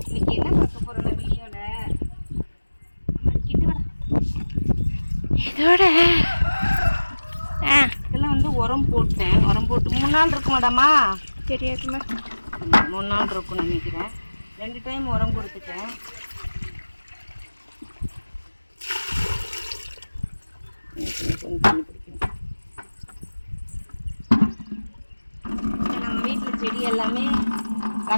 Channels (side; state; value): both; inverted; correlation -1.00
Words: இன்னைக்கு என்ன பார்க்க போறோம் வீடியோல? இதோட இதெல்லாம் வந்து உரம் போட்டேன். உரம் போட்டு 3 நாள் இருக்கு மேடமா. தெரியாதுமா. 3 நாள் இருக்கும்னு நினைக்கிறேன். 2 டைம் உரம் கொடுத்துட்டேன். நம்ம வீட்டில் செடி எல்லாமே